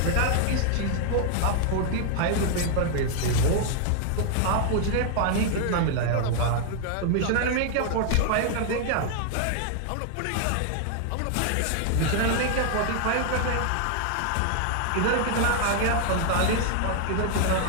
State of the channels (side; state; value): both; different; correlation 0.00